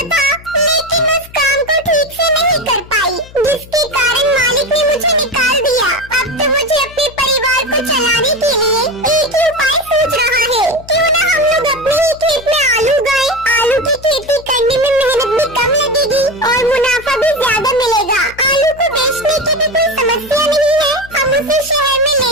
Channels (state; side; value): noise; left; hum, 20 dB below the sound